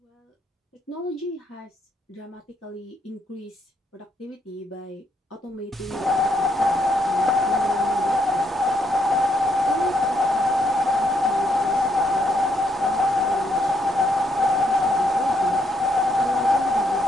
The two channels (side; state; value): both; normal; correlation 0.74